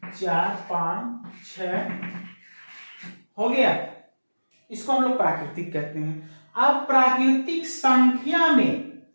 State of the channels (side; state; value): both; inverted; correlation -1.00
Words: 4 5 6, हो गया, इसको हम लोग प्राकृतिक कहते हैं। अब प्राकृतिक संख्या में